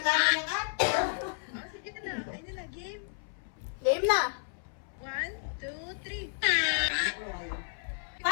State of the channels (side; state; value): right; silent; 56 dB below the other